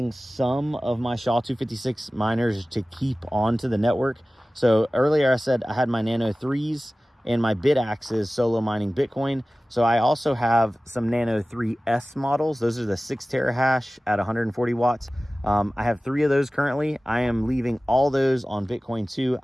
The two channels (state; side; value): normal; both; correlation 0.97